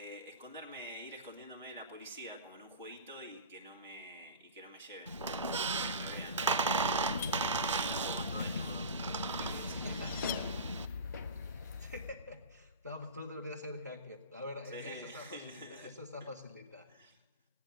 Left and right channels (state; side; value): inverted; both; correlation -0.30